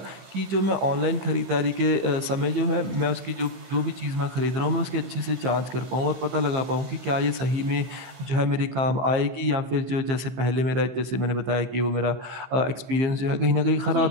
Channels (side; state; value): left; late; 15 ms